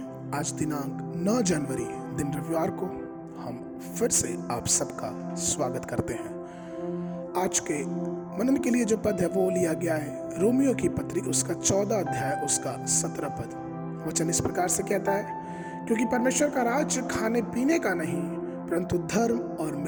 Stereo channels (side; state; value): both; identical; correlation 1.00